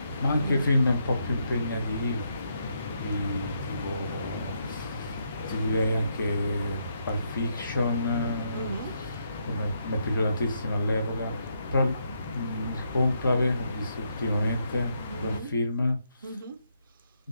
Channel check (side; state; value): both; inverted; correlation -0.77